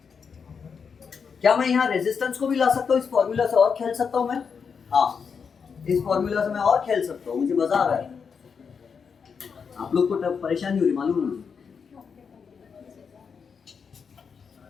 क्या मैं यहाँ रेजिस्टेंस को भी ला सकता हूँ इस फॉर्मूला से और खेल सकता हूँ मैं? हाँ, इस फॉर्मूला से मैं और खेल सकता हूँ, मुझे मजा आ रहा है। आप लोग को परेशानी हो रही मालूम है मुझे,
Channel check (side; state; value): right; quieter; 6.1 dB